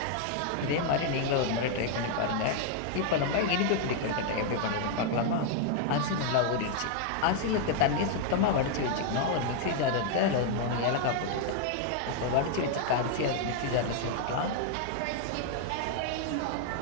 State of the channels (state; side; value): different; both; correlation 0.00